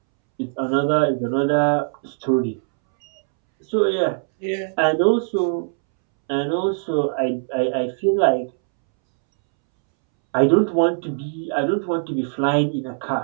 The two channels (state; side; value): silent; left; 65 dB below the other